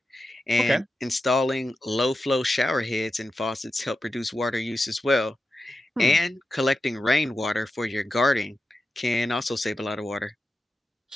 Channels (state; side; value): normal; both; correlation 0.91